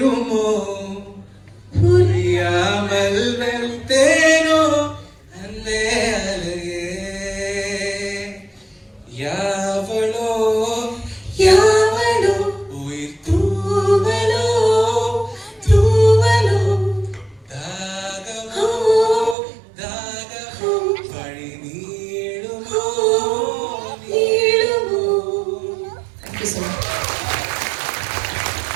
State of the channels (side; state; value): left; drops out; at 19.4 s